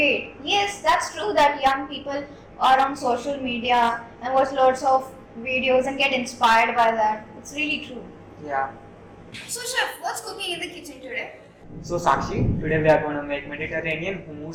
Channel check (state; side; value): identical; both; correlation 1.00